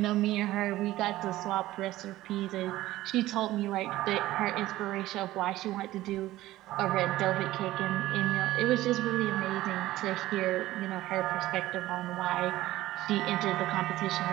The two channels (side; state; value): left; quieter; 16.1 dB